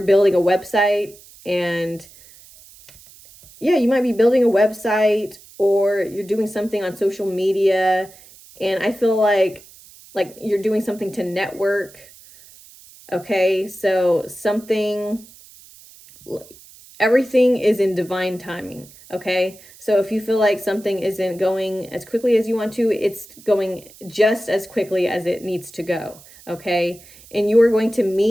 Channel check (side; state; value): right; noise; hiss, 23 dB below the sound